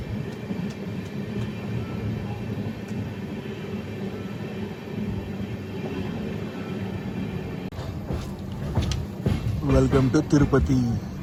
Welcome to Tirupati.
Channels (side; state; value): both; identical; correlation 1.00